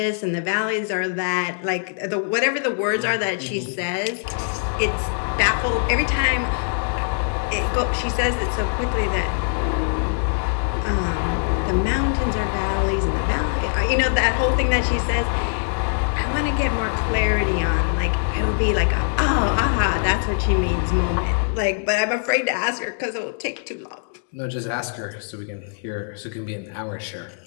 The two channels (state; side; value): silent; right; digital silence